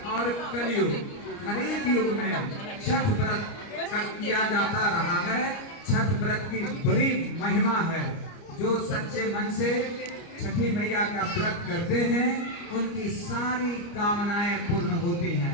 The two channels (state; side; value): late; right; 29 ms